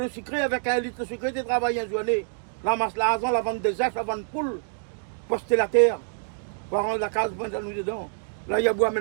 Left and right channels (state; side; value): silent; left; digital silence